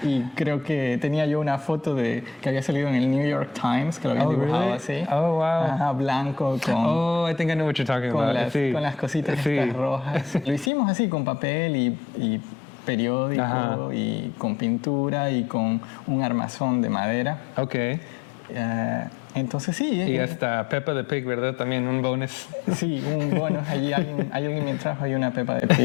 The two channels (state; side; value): drops out; right; at 10.7 s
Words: Y creo que tenía yo una foto que había salido en el New York Times, que lo habían dibujado así. Oh, wow. Ajá, blanco, Oh, I think I know what you're talking about. con las cositas estas rojas. Lo hicimos así, con papel y periódico y con pintura y con un armazón de madera. Ok. Entonces sí. Y hasta Peppa the Pig, ¿verdad? También un bonus. Sí, un bonus. Allí alguien me trajo ahí una Peppa de